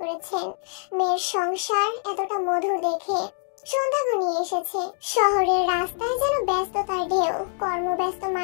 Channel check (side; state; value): right; silent; 62 dB below the other